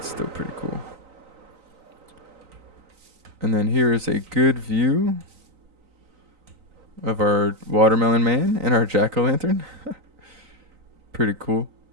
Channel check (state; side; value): late; left; 3.9 ms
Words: still pretty cool. And then here is a good view of our watermelon man and our jack-o'-lantern. Pretty cool.